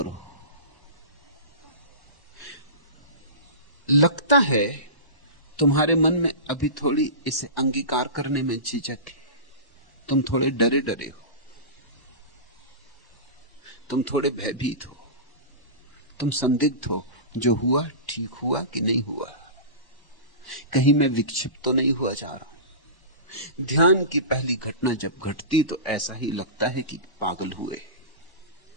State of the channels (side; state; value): right; late; 1.1 ms